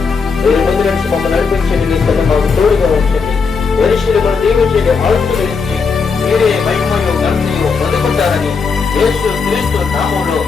మీరు ముందు నుంచి మమ్మల్ని నడిపించండి. నీ తన మాకు తోడుగా ఉంచండి. మనుషులను దీవించండి, ఆశీర్వదించి మీరే మహిమయో ఘనతయో పొందుకుంటారని యేసు క్రీస్తు నామములో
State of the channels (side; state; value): right; quieter; 5.2 dB